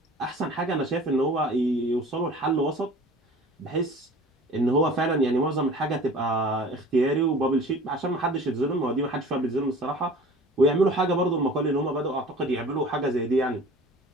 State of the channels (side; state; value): both; normal; correlation 0.44